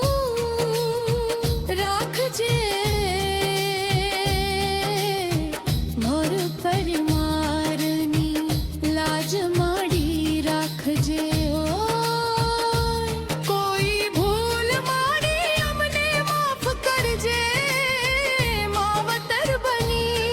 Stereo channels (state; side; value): identical; both; correlation 1.00